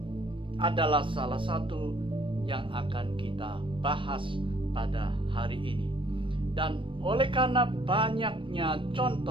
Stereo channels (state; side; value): late; left; 0.25 ms